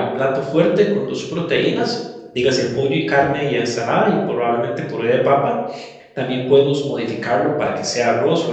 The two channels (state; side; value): identical; both; correlation 1.00